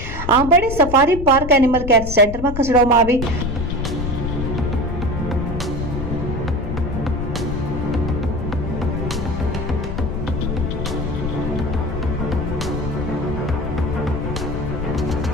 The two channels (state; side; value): noise; left; rumble, 6 dB below the sound